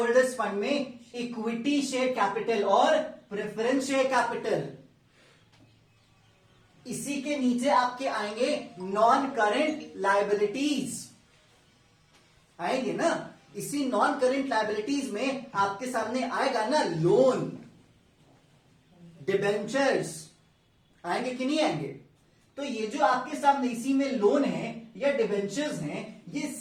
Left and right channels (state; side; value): identical; both; correlation 1.00